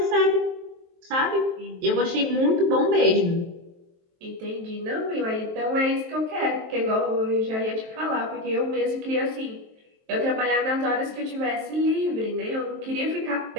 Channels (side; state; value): left; late; 23 ms